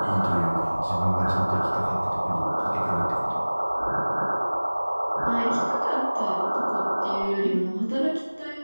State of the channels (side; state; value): both; inverted; correlation -1.00